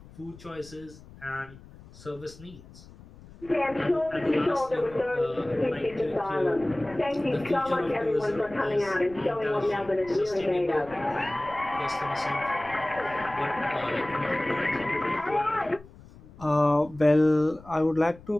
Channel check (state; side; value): noise; left; rumble, 20 dB below the sound